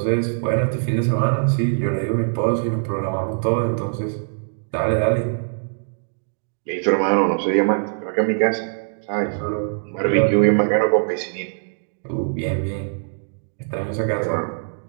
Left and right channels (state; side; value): silent; left; digital silence